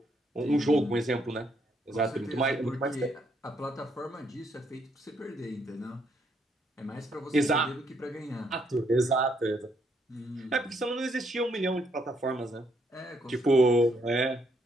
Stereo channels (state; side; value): normal; both; correlation 0.73